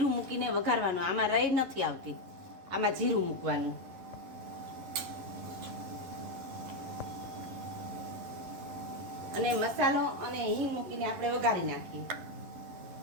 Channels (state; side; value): late; left; 11 ms